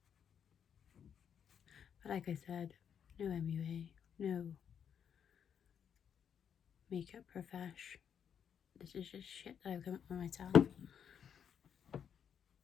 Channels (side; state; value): right; quieter; 8.0 dB